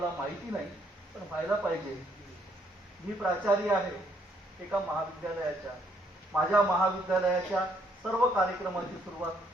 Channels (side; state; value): both; normal; correlation 0.69